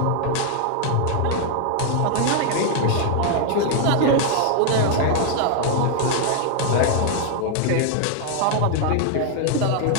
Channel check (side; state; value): both; different; correlation 0.00